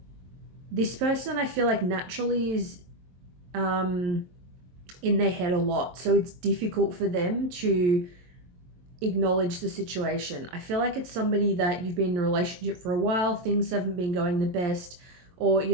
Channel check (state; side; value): late; left; 22 ms